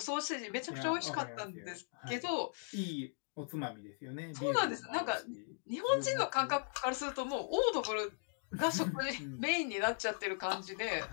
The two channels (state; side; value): silent; right; digital silence